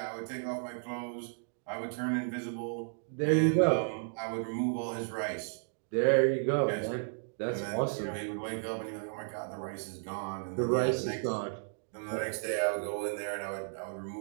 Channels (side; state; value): left; silent; digital silence